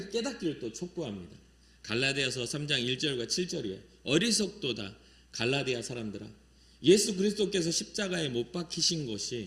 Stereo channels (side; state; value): both; identical; correlation 1.00